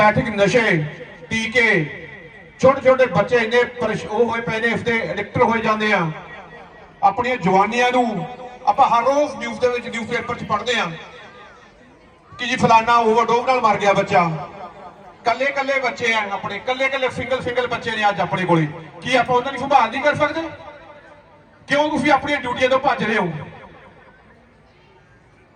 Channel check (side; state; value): both; identical; correlation 1.00